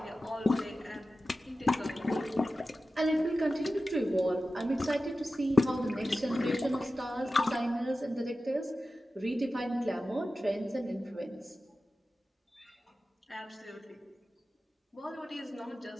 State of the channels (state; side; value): normal; both; correlation 0.94